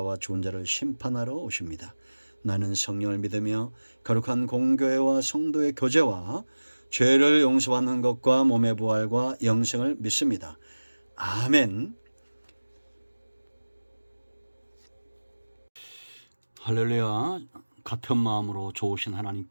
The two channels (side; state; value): both; inverted; correlation -1.00